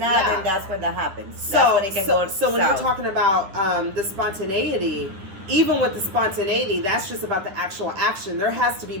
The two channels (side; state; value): left; late; 10 ms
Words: yeah. then that's when that happens. So, That's when it can go so when south. you're talking about the spontaneity, even with the spontaneity, that's just about the actual action. There has to be